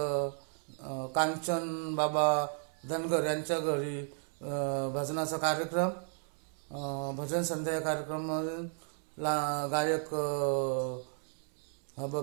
कांचन बाबा धनगर यांच्या घरी भजनाचा कार्यक्रम, भजन संध्या कार्यक्रमाला गायक हब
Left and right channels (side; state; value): left; silent; digital silence